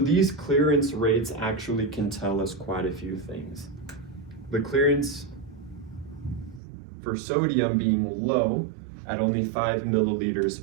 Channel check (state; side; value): drops out; left; at 6.6 s